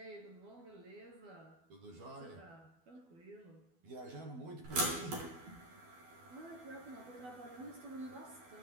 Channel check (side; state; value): left; late; 12 ms